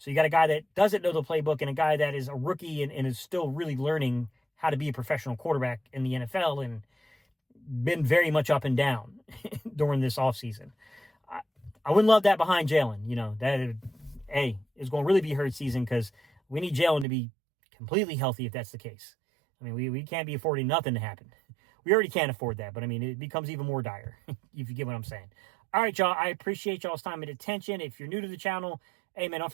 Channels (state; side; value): drops out; left; at 17.1 s